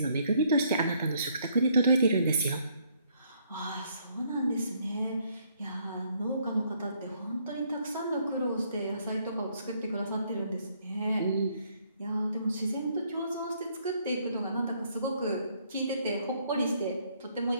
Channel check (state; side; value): inverted; both; correlation -0.68